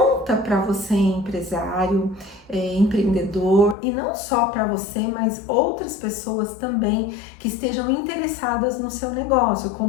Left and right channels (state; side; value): drops out; right; at 3.8 s